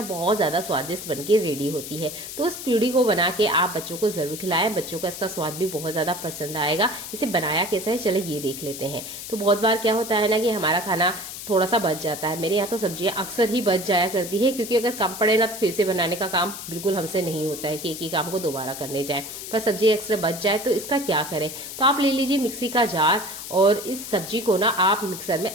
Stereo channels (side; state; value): left; noise; hiss, 9 dB below the sound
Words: बहुत ज्यादा स्वादिष्ट बनके रेडी होती है। तो उस पूड़ी को बना के आप बच्चों को जरूर खिलाएं, बच्चों का इसका स्वाद भी बहुत ज्यादा पसंद आएगा। इसे बनाया कैसा है चलो ये देख लेते हैं। तो बहुत बार क्या होता है ना कि हमारा खाना थोड़ा सा बच जाता है। मेरे यहाँ तो सब्जियां अक्सर ही बच जाया करती है, क्योंकि अगर कम पड़े ना तो फिर से बनाने का काम बिल्कुल हमसे नहीं होता है कि एक ही काम को दोबारा करने जाए। पर सब्जी एक्स्ट्रा बच जाए तो इसका क्या करें। तो आप ले लीजिए मिक्सी का जार और इस सब्जी को ना आप मिक्सर में